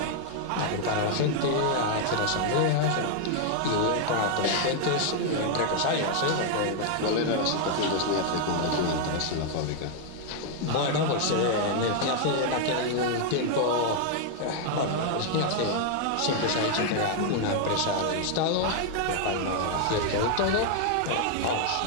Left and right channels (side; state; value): both; different; correlation 0.00